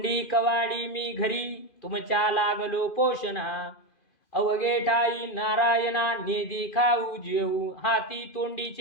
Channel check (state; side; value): late; right; 2.5 ms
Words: कवाडी मी घरी, तुमच्या लागलो पोषणा, अवघे ठाई नारायणा नेदी खाऊ जेऊ, हाती